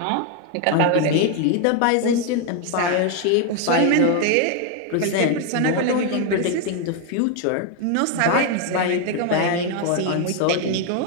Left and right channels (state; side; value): different; both; correlation 0.01